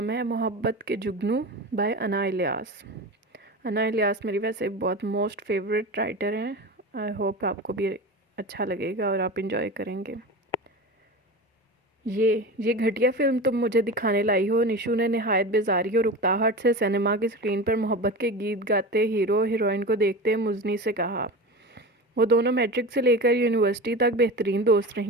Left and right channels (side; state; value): both; normal; correlation 0.28